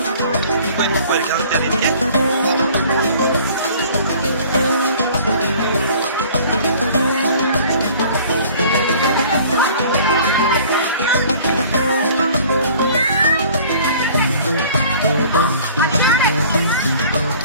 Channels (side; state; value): both; inverted; correlation -0.50